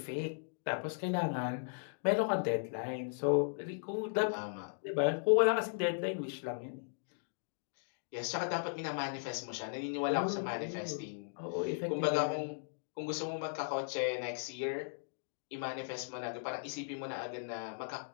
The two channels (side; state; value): right; silent; digital silence